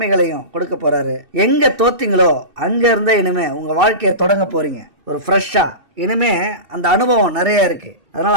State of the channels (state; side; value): late; left; 2.6 ms